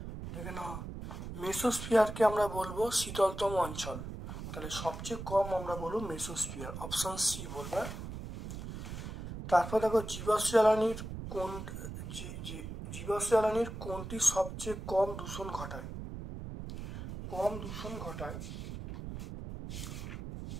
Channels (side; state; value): right; noise; rumble, 8 dB below the sound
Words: দেখে নাও, মেসোস্ফিয়ারকে আমরা বলবো শীতলতম অঞ্চল। তাহলে সবচেয়ে কম আমরা বলবো মেসোস্ফিয়ার, অপশন সি বলবে। তারপর দেখো, জীবাশ্ম জ্বালানির কোনটি সবচেয়ে কম দূষণ ঘটায়?